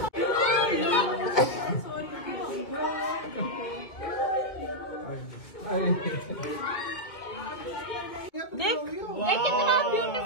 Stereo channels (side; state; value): right; late; 2.2 ms